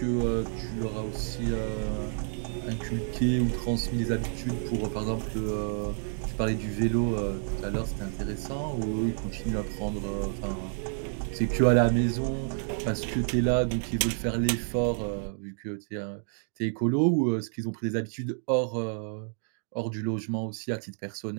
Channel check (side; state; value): left; silent; 58 dB below the other